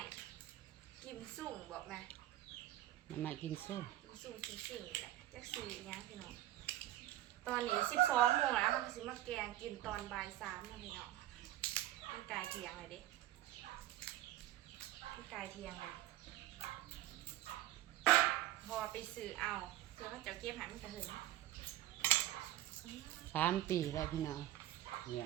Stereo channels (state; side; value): quieter; left; 14.5 dB